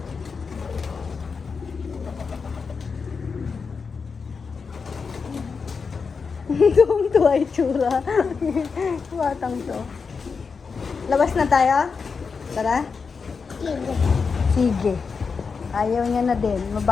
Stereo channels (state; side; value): quieter; right; 5.3 dB